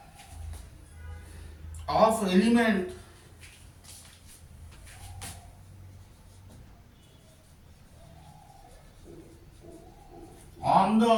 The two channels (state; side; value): identical; both; correlation 1.00